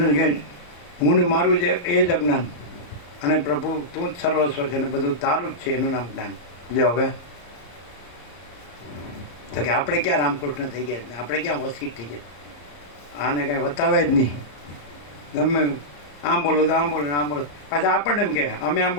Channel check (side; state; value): right; late; 34 ms